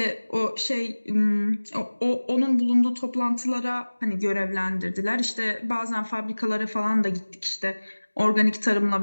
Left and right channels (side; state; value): both; inverted; correlation -1.00